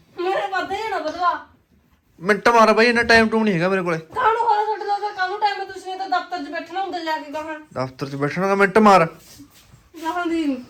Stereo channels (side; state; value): both; identical; correlation 1.00